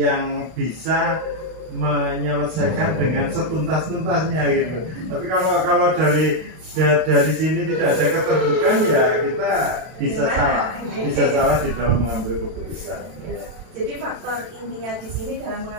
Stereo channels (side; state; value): left; late; 32 ms